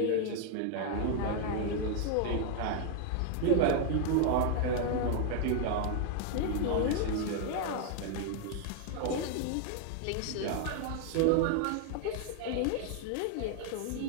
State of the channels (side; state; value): both; different; correlation 0.00